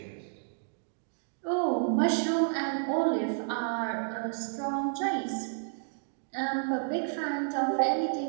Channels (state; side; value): silent; left; digital silence